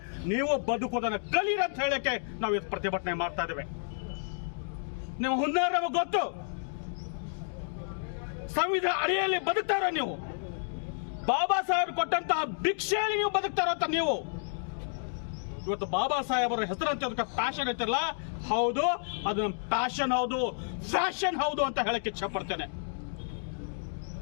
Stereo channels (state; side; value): silent; right; digital silence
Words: ನೀವು ಬದುಕೋದನ್ನ ಕಲೀರಿ ಅಂತ ಹೇಳಕ್ಕೆ ನಾವು ಇವತ್ತು ಪ್ರತಿಭಟನೆ ಮಾಡ್ತಾ ಇದ್ದೇವೆ. ನಿಮ್ಮ ಹುನ್ನಾರ ನಮಗೆ ಗೊತ್ತು. ಸಂವಿಧಾನ ಅಡಿಯಲ್ಲಿ ಬದುಕ್ತಾರ ನೀವು, ಬಾಬಾ ಸಾಹೇಬ್ ಕೊಟ್ಟಂತಹ ಭಿಕ್ಷೆಯಲ್ಲಿ ನೀವು ಬದುಕ್ತಾರ ಅಂತ ನೀವು. ಇವತ್ತು ಬಾಬಾ ಸಾಹೇಬರ ಹೆಸರಂತೆ ಅದಕ್ಕೆ ಪ್ಯಾಷನ್ ಐತಿರಲ್ಲ, ಹೌದು, ಅದು ಪ್ಯಾಷನ್ ಹೌದು, ಫ್ಯಾಷನ್ ಹೌದು ಅಂತ ಹೇಳಕ್ಕೆ ಇಚ್ಛೆ ಪಡ್ತೇನೆ.